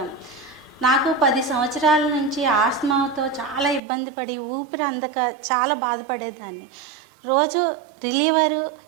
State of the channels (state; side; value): drops out; left; at 3.8 s